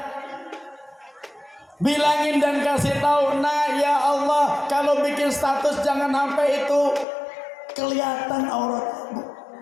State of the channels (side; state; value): right; drops out; at 7.1 s